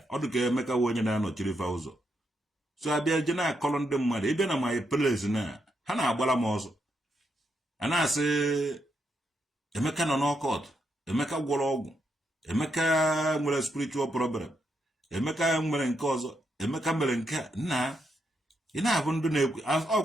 ọ dị ka Emeka wụ onye na-anọchiri fa ụzọ so abịa je na-akọrọ ndị mmadụ ịbịa na my place na ha na-agbara m ọzọ a na-asị Emeka nọ n'ọkọt Emeka gwọrọ ọgwụ Emeka nwere spiritual problem Emeka nwere nke ọzọ Emeka mere nke nna ị na-abụ ndị na-ekwu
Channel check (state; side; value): normal; both; correlation 0.80